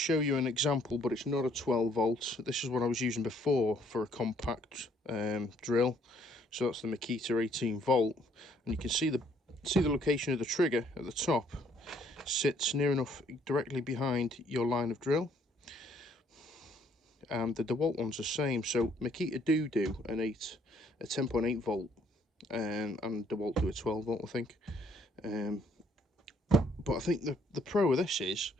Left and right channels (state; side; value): normal; both; correlation 0.65